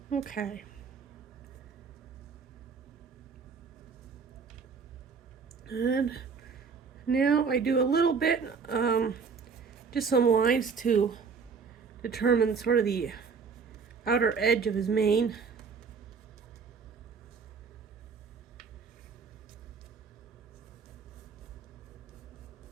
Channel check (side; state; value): left; quieter; 5.6 dB